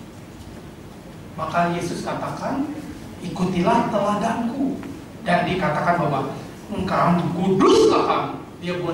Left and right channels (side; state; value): both; identical; correlation 1.00